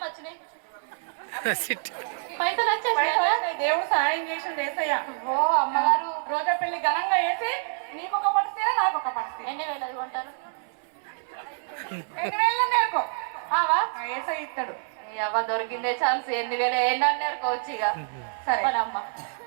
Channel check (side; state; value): left; silent; 57 dB below the other